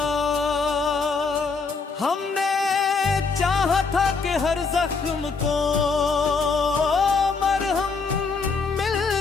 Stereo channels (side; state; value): right; quieter; 4.7 dB